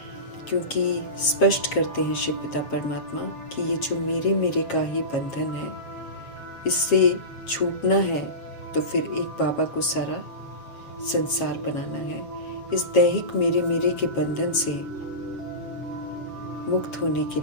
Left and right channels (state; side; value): late; right; 7.5 ms